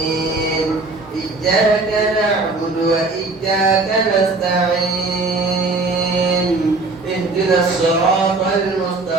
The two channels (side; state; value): left; quieter; 3.5 dB